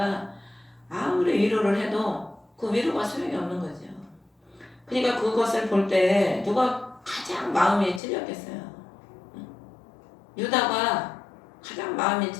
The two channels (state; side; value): drops out; right; at 8.0 s